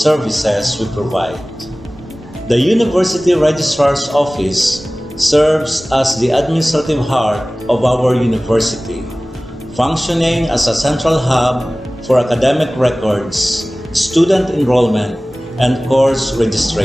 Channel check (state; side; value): normal; both; correlation 0.98